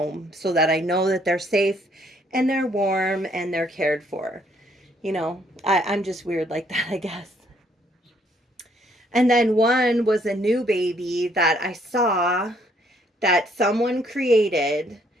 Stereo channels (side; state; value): both; normal; correlation 0.66